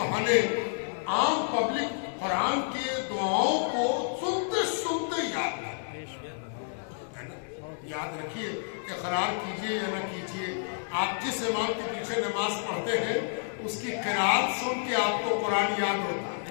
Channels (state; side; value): silent; right; digital silence